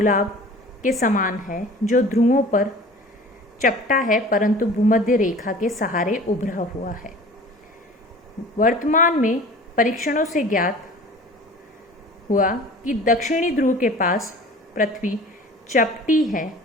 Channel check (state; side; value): normal; both; correlation 0.43